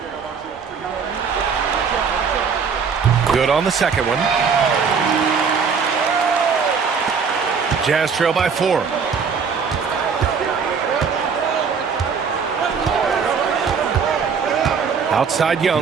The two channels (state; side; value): quieter; left; 6.0 dB